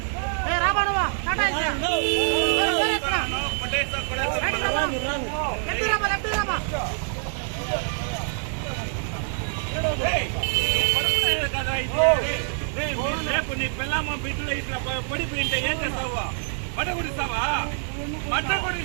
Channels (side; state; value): left; silent; 57 dB below the other